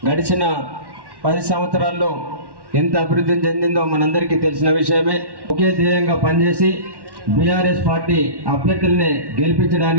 గడిచిన 10 సంవత్సరాల్లో ఎంత అభివృద్ధి చెందిందో మనందరికీ తెలిసిన విషయమే. ఒకే ధ్యేయంగా పనిచేసి బీఆర్ఎస్ పార్టీ అభ్యర్థుల్ని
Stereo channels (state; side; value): late; left; 1.1 ms